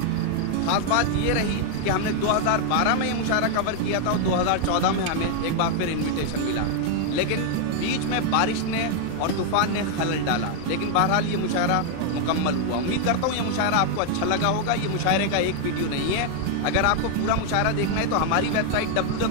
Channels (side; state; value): both; different; correlation 0.00